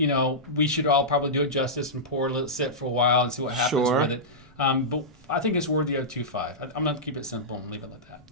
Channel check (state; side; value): normal; both; correlation -0.13